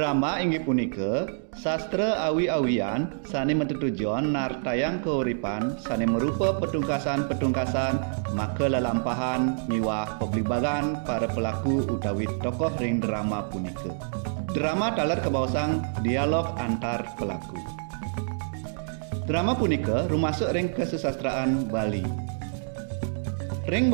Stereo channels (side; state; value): left; silent; digital silence